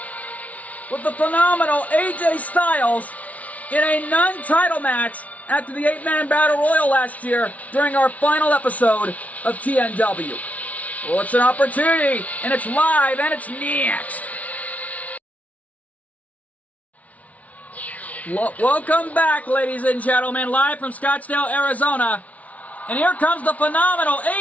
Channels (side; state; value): right; late; 0.069 ms